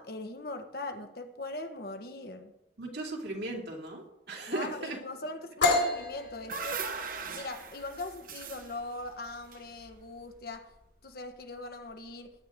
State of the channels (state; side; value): normal; both; correlation -0.01